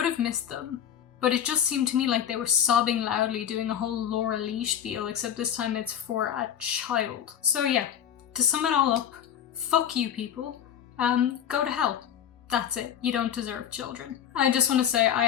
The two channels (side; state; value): right; quieter; 9.5 dB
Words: have missed them. But it just seemed to me like they were sobbing loudly, doing a whole Laura Lee spiel, except this time it's for a child. So yeah, to sum it all up, fuck you people. Go to hell. That's it. You don't deserve children. I just want to say I